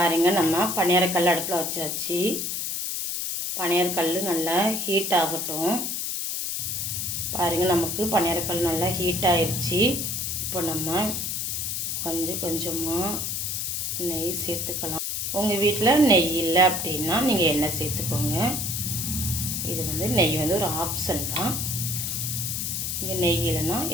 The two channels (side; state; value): left; noise; hiss, 2 dB below the sound